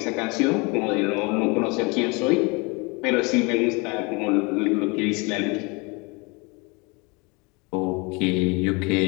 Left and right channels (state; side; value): quieter; right; 28.7 dB